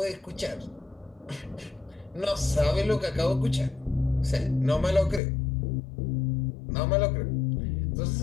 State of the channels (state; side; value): drops out; right; at 5.2 s